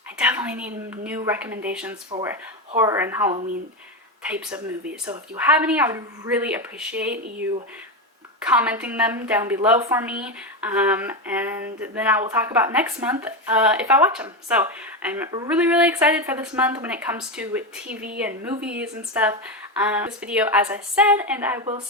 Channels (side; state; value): both; normal; correlation 0.13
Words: definitely need new recommendations for horror and Halloween types of movies. So if you have any, I would really appreciate you commenting them down below for me, and then I will talk about next month if I watch them. So I'm really excited for this month when it comes to TV and movies and stuff. This video, as I said, and I will